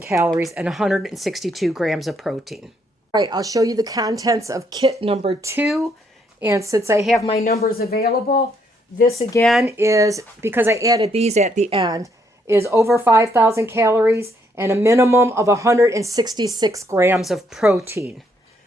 calories and 162 grams of protein. All right, I'll show you the contents of kit number 2. And since I have my numbers available, this again is, because I added these at the end, is over 5,000 calories and a minimum of 166 grams of protein.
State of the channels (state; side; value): normal; both; correlation 0.72